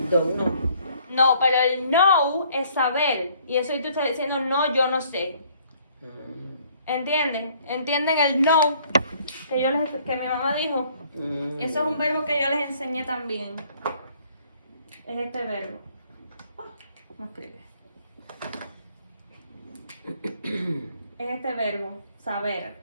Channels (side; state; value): both; inverted; correlation -0.61